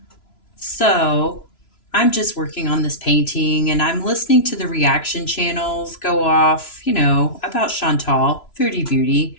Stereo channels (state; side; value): late; right; 3.0 ms